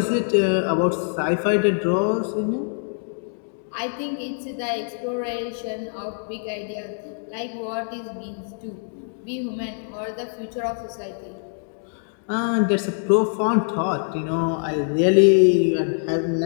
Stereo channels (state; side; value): silent; right; digital silence